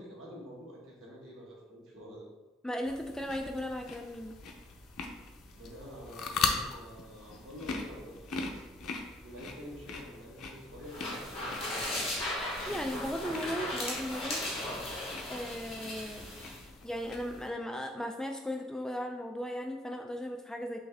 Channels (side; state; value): both; normal; correlation 0.64